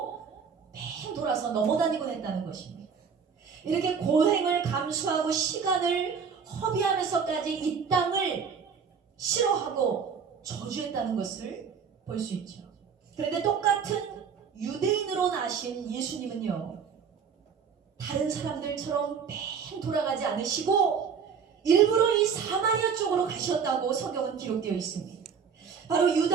뺑 돌아서 넘어다니곤 했다는 것입니다. 이렇게 고행을 감수하고 시간을 허비하면서까지 이 땅을 싫어하고 저주했다는 것을 볼 수 있죠. 그런데 똑같은 유대인으로 나신 예수님은요, 다른 사람들처럼 뺑 돌아가지 않으시고 일부러 이 사마리아 쪽으로 가셨다고 성경은 기록되어 있습니다. 바로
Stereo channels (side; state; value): left; quieter; 6.5 dB